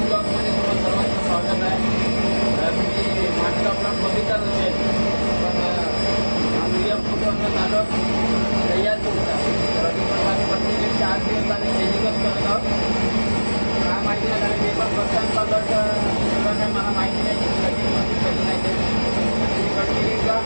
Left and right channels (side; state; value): both; inverted; correlation -1.00